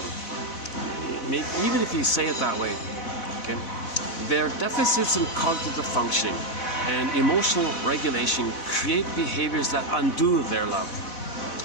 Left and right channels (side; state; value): right; late; 4.0 ms